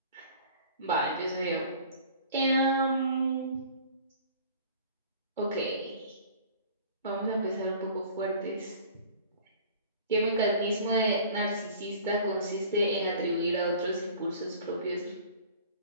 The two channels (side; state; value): both; inverted; correlation -0.47